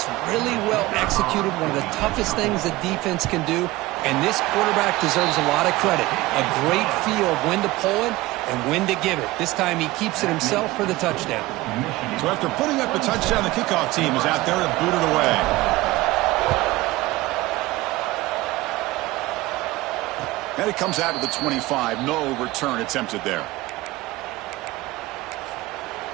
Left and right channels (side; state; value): left; quieter; 19.1 dB